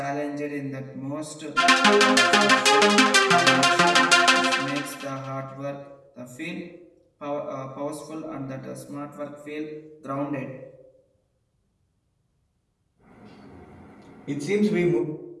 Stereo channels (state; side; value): identical; both; correlation 1.00